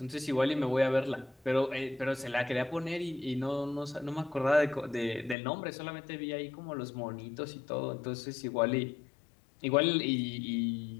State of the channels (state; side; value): drops out; right; at 5.4 s